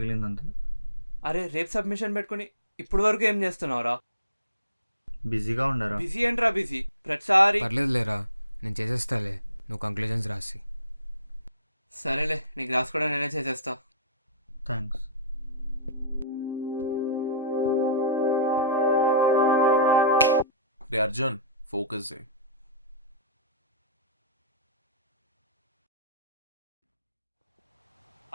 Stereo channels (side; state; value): both; inverted; correlation -0.41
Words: అంతే. అరే రేపు సబ్మిషన్ పెట్టుకుని ఇప్పుడు వరకు ఏం చేస్తున్నావురా? బిజీగా ఉండరా? బిజీ ఏంట్రా బిజీ? ప్రతిసారి పర్లేదు లేరా, నేను చేసేస్తాలే, నువ్వు కంక్లూజన్స్ రాసి. సరేలే, నీ క్లాస్ కూడా నేనే చేసేస్తా. థ్యాంక్స్. రే అర్జున్, ఫోకస్ చేయి.